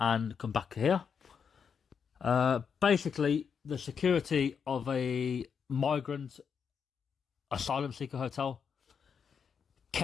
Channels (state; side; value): quieter; right; 6.7 dB